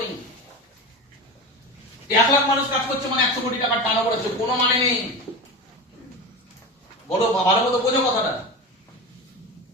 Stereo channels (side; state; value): both; normal; correlation 0.25